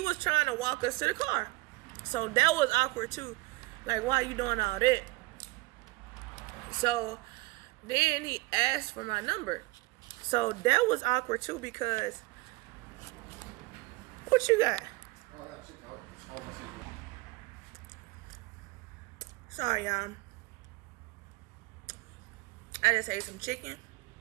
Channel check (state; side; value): quieter; left; 22.5 dB